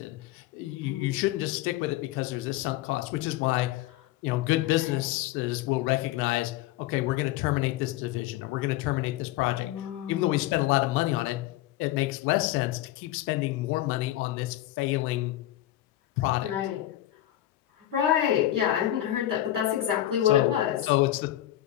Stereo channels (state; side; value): quieter; right; 14.2 dB